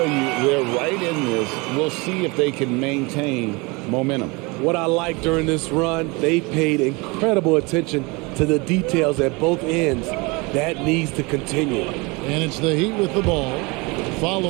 you, they're right in this. We'll see if they can maintain momentum. What I like during this run, they paid incredible attention to the details at both ends. That needs to continue. And it's the Heat with the ball,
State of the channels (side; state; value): left; quieter; 26.7 dB